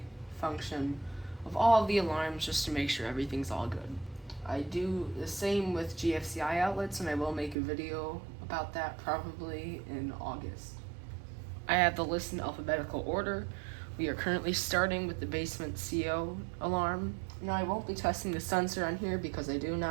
function of all of the alarms just to make sure everything's all good. I do the same with GFCI outlets, and I will make a video about that probably in August. I have the list in alphabetical order. We are currently starting with the basement CO alarm. Now, I won't be testing the sensor on here because I do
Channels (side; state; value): left; drops out; at 7.6 s